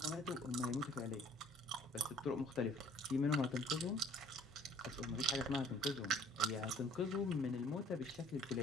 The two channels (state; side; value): normal; both; correlation 0.55